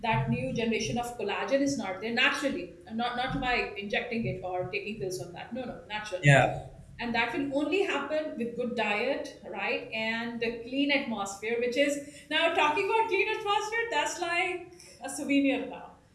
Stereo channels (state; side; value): identical; both; correlation 1.00